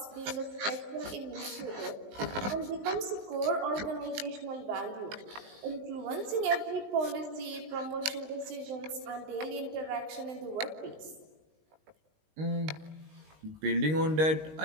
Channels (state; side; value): late; left; 19 ms